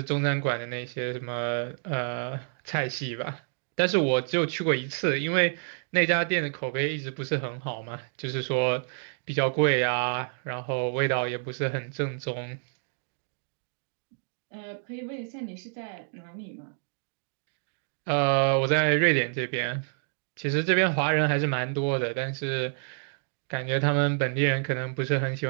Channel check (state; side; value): silent; left; digital silence